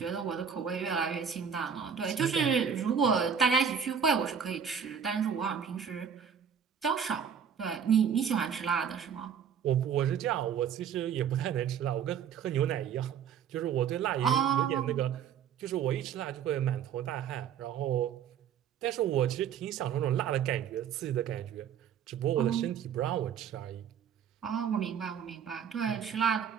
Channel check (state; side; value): quieter; left; 7.7 dB